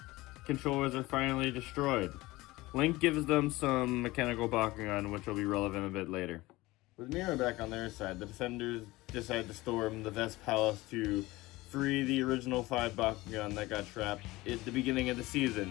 controllers are finally destroyed. Link gives them some mechanical Bakugan, which will be relevant a bit later. With Mira back on their side, the defenders decide to storm the Vest Palace to free the original 5 Bakugan that got trapped at the beginning of the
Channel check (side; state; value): right; quieter; 19.9 dB